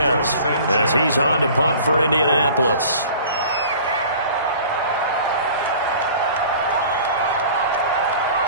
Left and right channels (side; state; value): both; inverted; correlation -0.45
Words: as he's on to punt for Indianapolis.